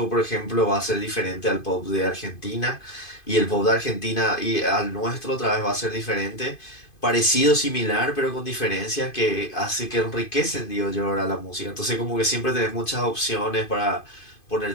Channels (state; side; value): late; right; 2.5 ms